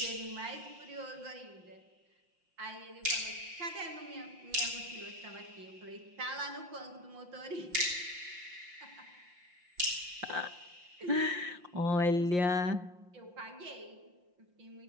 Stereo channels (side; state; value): left; late; 5.7 ms